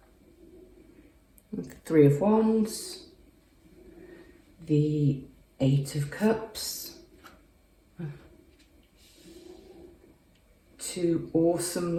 The 3 of Wands, the 8 of Cups, 2 awesome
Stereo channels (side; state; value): both; identical; correlation 1.00